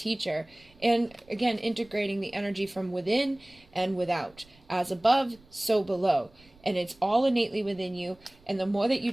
And again, integrating the energy from within and without. As above, so below. And it's all innately within you. And the more that you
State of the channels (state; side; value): noise; right; rumble, 28 dB below the sound